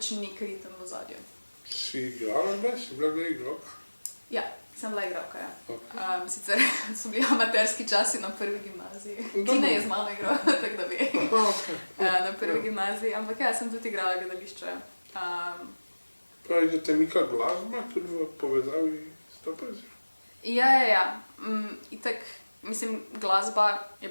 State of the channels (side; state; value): both; inverted; correlation -1.00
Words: nek ritem v ozadju. Si igrala kdaj? Si bila kdaj igralka? Ja, sem bila igralka, ja. Okay. Sicer so bili amaterski časi na prvi gimnaziji. Tina je z mano igrala, tako da ve. Okay. Na prvi gimnaziji, ampak ja, sem tudi igrala gledališče. Pravi, da te mika glasba tudi v povezavi s to poezijo? Ja. Itak, mislim, glasba je